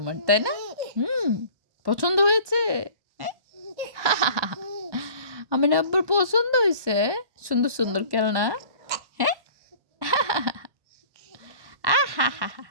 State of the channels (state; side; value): late; left; 1.2 ms